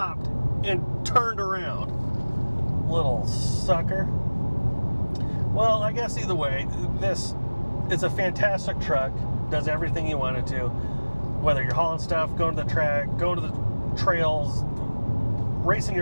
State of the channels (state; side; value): inverted; both; correlation -1.00